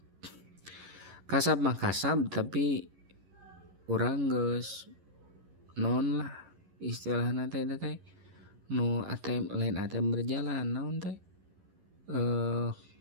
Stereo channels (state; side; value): late; left; 11 ms